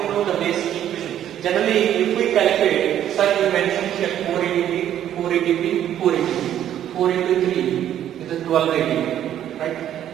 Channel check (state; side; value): quieter; left; 11.0 dB